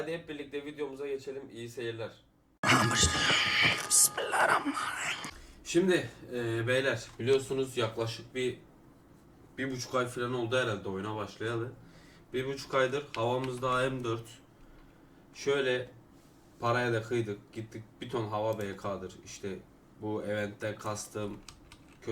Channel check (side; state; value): both; identical; correlation 1.00